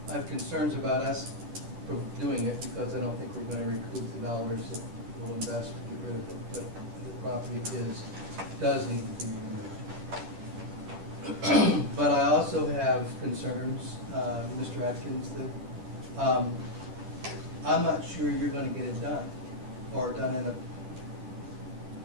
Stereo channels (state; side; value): late; left; 11 ms